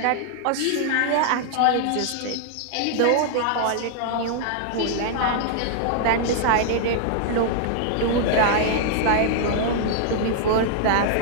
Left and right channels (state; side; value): different; both; correlation -0.01